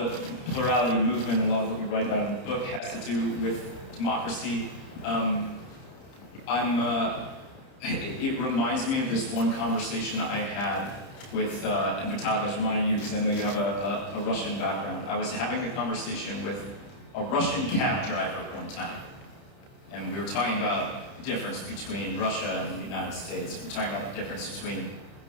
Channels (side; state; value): right; late; 30 ms